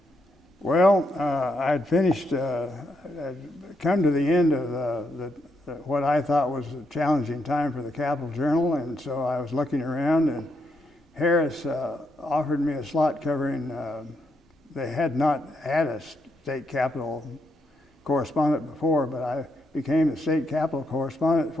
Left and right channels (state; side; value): normal; both; correlation 0.79